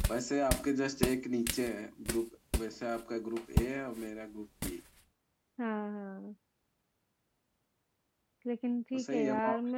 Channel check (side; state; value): both; identical; correlation 1.00